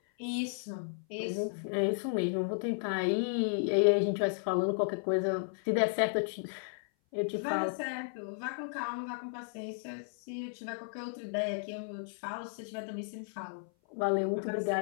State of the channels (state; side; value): silent; right; 55 dB below the other